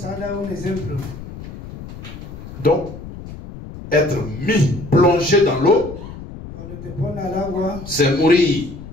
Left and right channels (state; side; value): noise; left; rumble, 13 dB below the sound